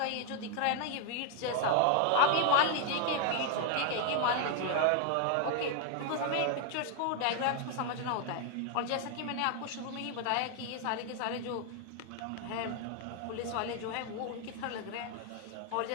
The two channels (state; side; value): different; both; correlation 0.00